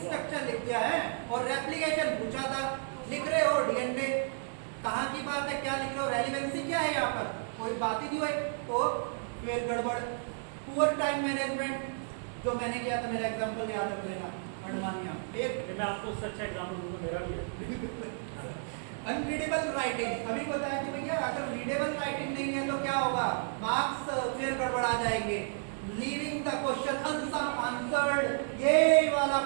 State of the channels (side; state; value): left; silent; 56 dB below the other